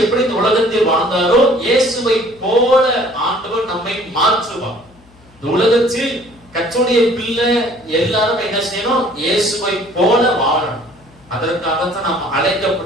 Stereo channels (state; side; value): noise; left; hum, 28 dB below the sound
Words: எப்படி இந்த உலகத்தில் வாழ்ந்தாரோ இயேசுவை போல ஆண்டவர் நம்மை மாற்றுவார். இந்த உலகத்தில் கர்த்தருடைய பிள்ளை எல்லாரும் என்ன செய்யணும், இயேசுவை போல வாழணும். அதற்காகத்தான் நாம்